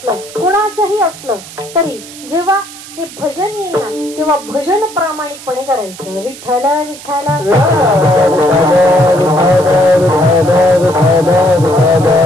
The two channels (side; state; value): right; noise; hiss, 16 dB below the sound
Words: कुणाचंही असलं तरी जेव्हा हे भजन येईल ना तेव्हा भजन प्रामाणिकपणे करायचं. विठ्ठल विठ्ठल